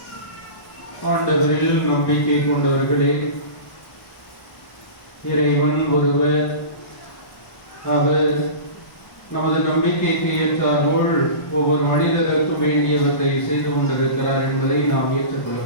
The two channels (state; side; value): late; right; 1.1 ms